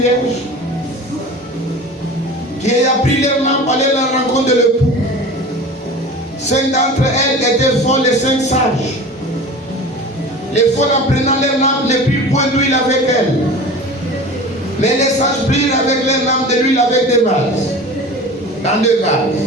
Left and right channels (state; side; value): normal; both; correlation 0.36